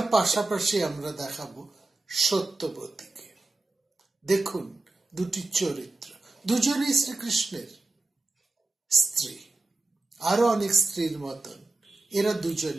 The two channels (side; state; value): left; quieter; 3.1 dB